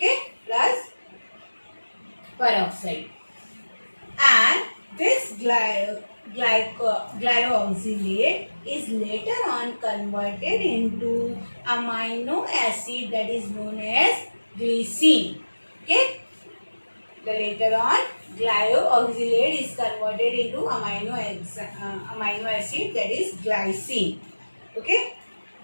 plus peroxide. And this glyoxylate is later on converted into amino acid, that is known as glycine. Okay, the later on glyoxylate is converted into amino acid, that is glycine. Okay,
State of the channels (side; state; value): both; inverted; correlation -1.00